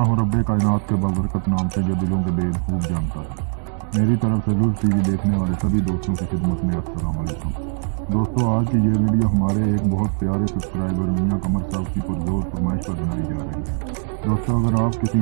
रब्बे कायनात के बाबरकत नाम से जो दिलों के भेद खूब जानता है। मेरी तरफ से लुज़ टीवी देखने वाले सभी दोस्तों की खिदमत में अस्सलाम वालेकुम। दोस्तों, आज की ये वीडियो हमारे एक बहुत प्यारे सब्सक्राइबर मियां कमर साहब की पुरजोर फरमाइश पर बनाई जा रही है। दोस्तों, अगर आप किसी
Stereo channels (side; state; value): left; silent; 60 dB below the other